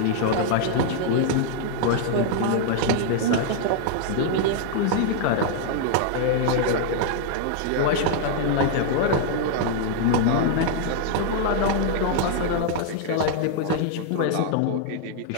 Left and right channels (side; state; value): both; different; correlation -0.01